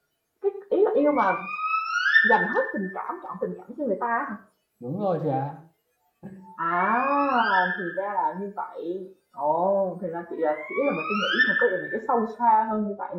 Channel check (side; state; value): both; identical; correlation 1.00